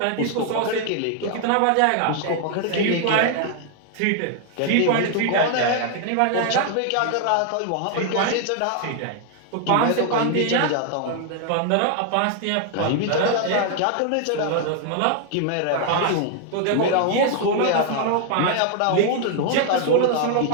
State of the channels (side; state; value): both; different; correlation 0.00